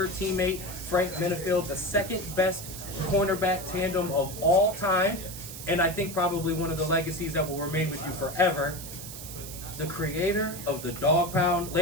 teammate, Frank Benefield, the second best cornerback tandem of all time, and I think probably one of the legacies that will remain with you forever. The creator of the Dog Pound,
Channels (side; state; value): right; noise; hiss, 11 dB below the sound